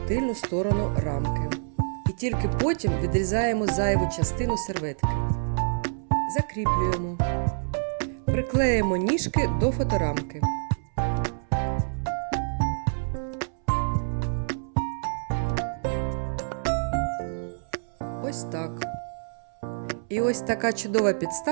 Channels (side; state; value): left; silent; 60 dB below the other